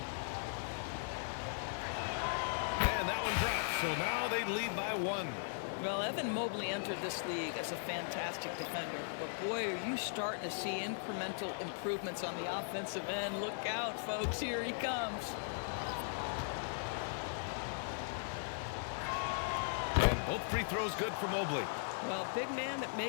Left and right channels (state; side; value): silent; right; digital silence